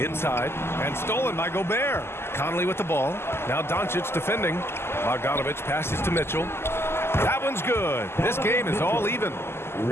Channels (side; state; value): right; late; 0.12 ms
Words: and stolen by Gobert. Conley with the ball. Now Doncic defending. Bogdanovic passes to Mitchell. That one's good. This game is all even.